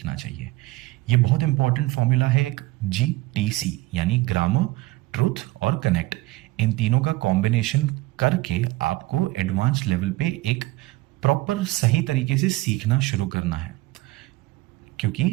चाहिए, ये बहुत इंपॉर्टेंट फॉर्मूला है एक GTC, यानी ग्रामर, ट्रूथ और कनेक्ट। इन तीनों का कॉम्बिनेशन करके आपको एडवांस लेवल पे एक प्रॉपर सही तरीके से सीखना शुरू करना है।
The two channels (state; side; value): quieter; left; 19.8 dB